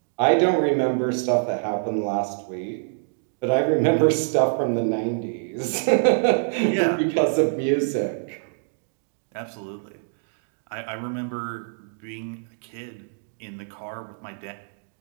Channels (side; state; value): left; silent; digital silence